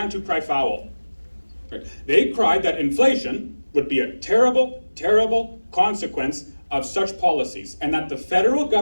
to cry foul. Right? They cried that inflation would be a terrible, terrible consequence of such policies, and that the federal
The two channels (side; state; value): both; inverted; correlation -1.00